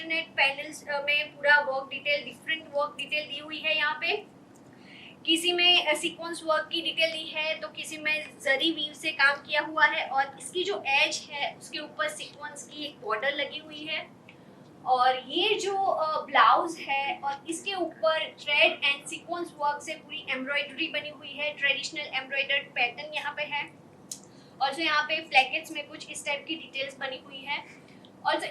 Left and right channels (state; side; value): identical; both; correlation 1.00